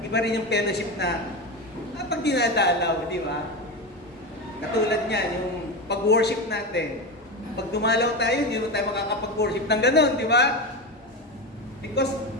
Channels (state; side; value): normal; both; correlation 0.19